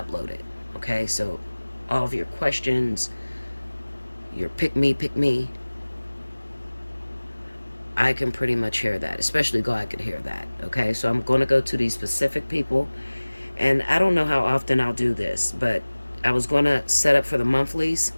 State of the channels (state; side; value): inverted; both; correlation -1.00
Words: Okay, so all of your questions, your pick me, I can pretty much hear that, especially God could hear that. Okay, so I'm going to go to these specific people, and I don't know how often I'll do this, but I was going to set up for the monthlies,